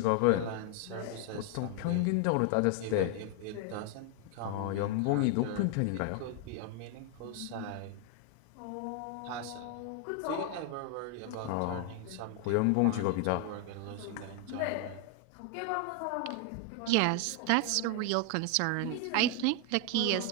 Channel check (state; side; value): different; both; correlation 0.01